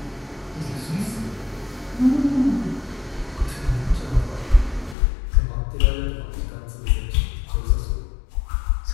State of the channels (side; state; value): right; drops out; at 5.0 s